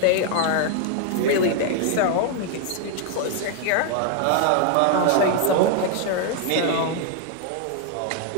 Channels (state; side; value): different; both; correlation 0.00